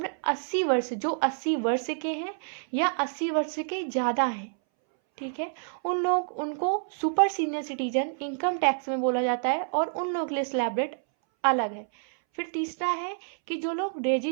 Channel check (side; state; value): left; silent; 59 dB below the other